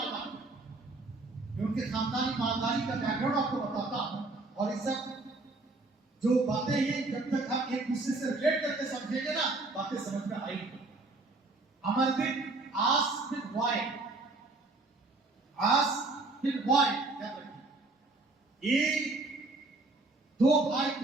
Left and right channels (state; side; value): quieter; left; 3.2 dB